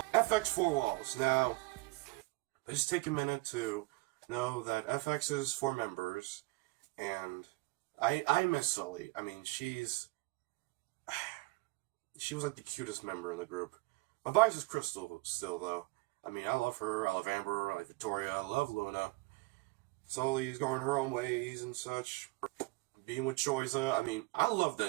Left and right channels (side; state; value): left; quieter; 24.2 dB